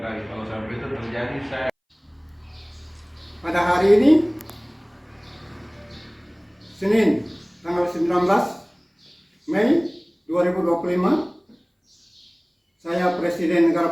kalau sampai itu terjadi, saya pada hari ini Senin tanggal 19 Mei 2025, saya Presiden Negara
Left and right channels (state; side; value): identical; both; correlation 1.00